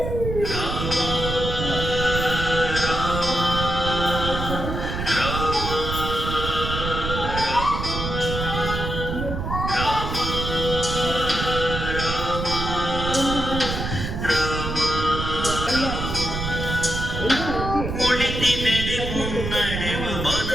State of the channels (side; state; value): right; noise; rumble, 4 dB below the sound